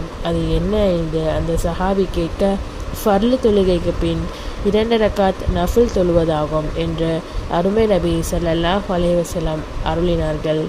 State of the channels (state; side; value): identical; both; correlation 1.00